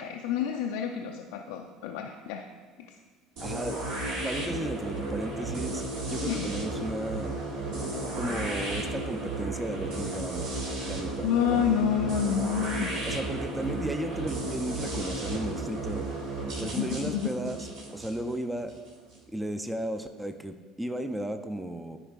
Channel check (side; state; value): both; normal; correlation 0.37